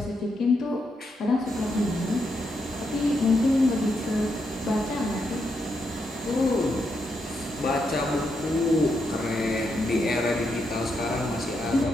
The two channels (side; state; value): both; normal; correlation 0.81